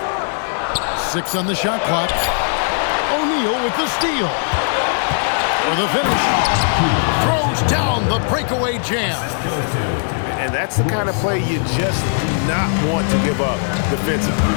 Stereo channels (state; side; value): silent; right; digital silence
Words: 6 on the shot clock. O'Neal with the steal. For the finish. Throws down the breakaway jam. And that's the kind of play you just do not want to give up defensively.